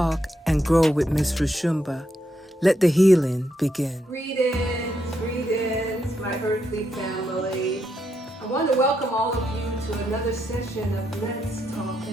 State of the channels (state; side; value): normal; both; correlation 0.80